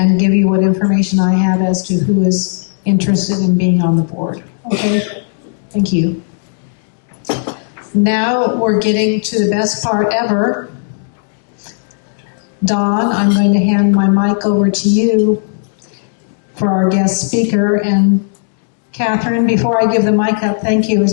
give you what information I have as to who is interested in being on the board. Okay? Thank you. Now we're getting to the best part ever. Dawn, I'm going to hand my mic over to you for our guest speaker. And Catherine, before I give the mic up, thank you. It's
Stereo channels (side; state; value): right; silent; digital silence